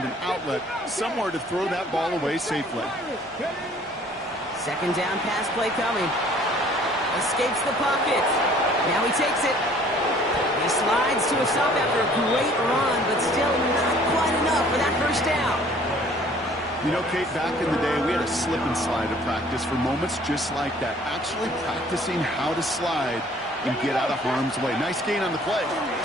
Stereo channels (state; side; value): normal; both; correlation 0.55